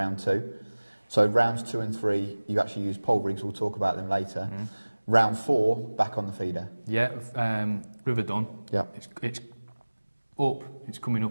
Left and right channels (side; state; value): both; inverted; correlation -1.00